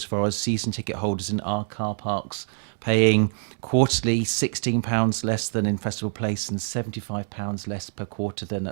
far as season ticket holders in our car parks paying quarterly £16 less than in Festival Place and £75 less per quarter than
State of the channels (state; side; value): silent; left; 61 dB below the other